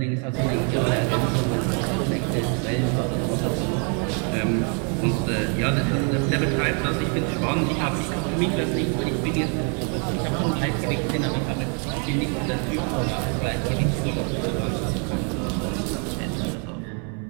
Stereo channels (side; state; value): left; quieter; 39.4 dB